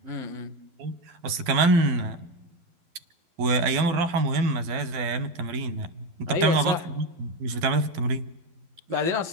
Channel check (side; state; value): left; late; 12 ms